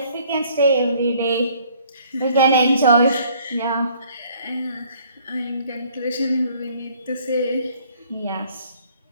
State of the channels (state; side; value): inverted; both; correlation -0.59